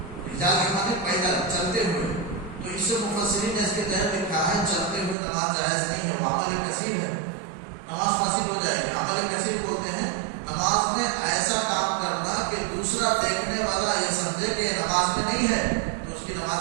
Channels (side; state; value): left; drops out; at 5.2 s